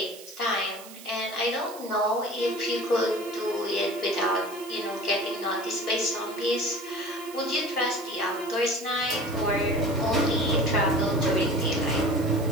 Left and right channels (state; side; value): noise; right; hiss, 17 dB below the sound